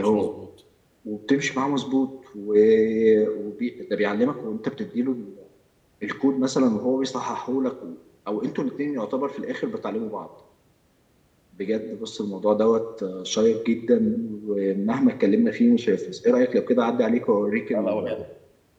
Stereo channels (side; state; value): both; identical; correlation 1.00